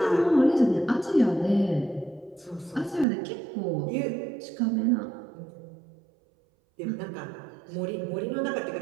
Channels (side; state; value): left; drops out; at 3.1 s